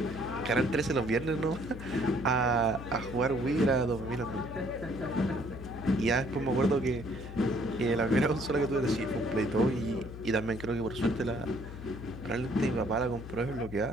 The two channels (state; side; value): noise; left; hum, 11 dB below the sound